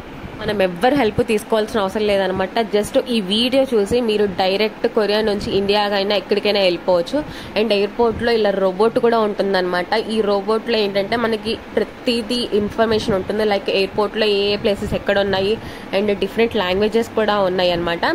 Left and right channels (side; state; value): both; identical; correlation 1.00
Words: మనం ఎవ్వరు హెల్ప్ తీసుకోవాల్సిన అవసరం లేదనమాట. జస్ట్ ఈ వీడియో చూసి మీరు డైరెక్ట్ కొరియా నుంచి ఇండియాకైనా ఎక్కడికైనా వెళ్ళిపోవచ్చు. అండ్ ఎయిర్పోర్ట్లో ఇలా రోబోట్ కూడా ఉంటుందన్నమాట. ఈ రోబోట్లో ఏంటంటే మనకి ప్రతిదీ ఇన్ఫర్మేషన్ ఉంటుంది. లైక్ ఎయిర్పోర్ట్లో ఏ ప్లేసెస్ ఎక్కడ ఉన్నాయి అండ్ డిఫరెంట్ లాంగ్వేజెస్ కూడా ఉన్నాయి అనమాట.